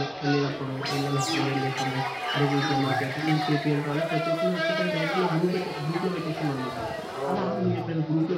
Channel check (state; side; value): identical; both; correlation 1.00